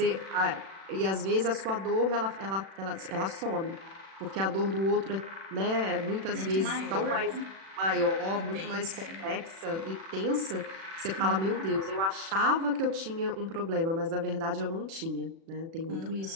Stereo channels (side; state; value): left; late; 36 ms